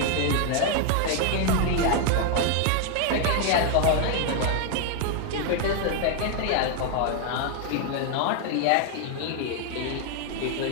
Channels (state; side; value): different; both; correlation 0.00